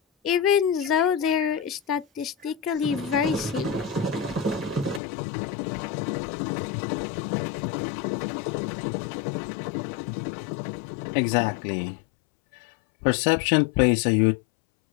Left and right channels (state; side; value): drops out; right; at 5.0 s